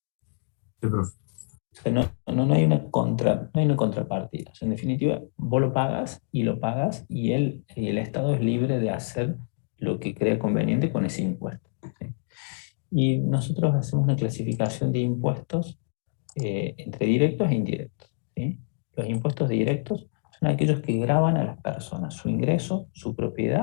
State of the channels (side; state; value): right; silent; digital silence